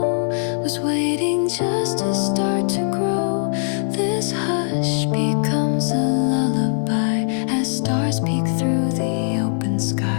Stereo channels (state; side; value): silent; right; 57 dB below the other